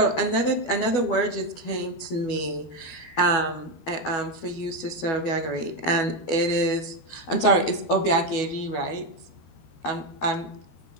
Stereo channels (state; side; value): late; right; 12 ms